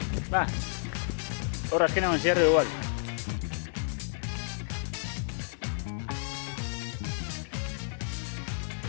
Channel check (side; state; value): right; silent; digital silence